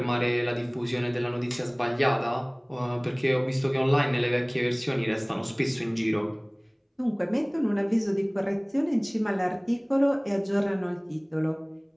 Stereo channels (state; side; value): identical; both; correlation 1.00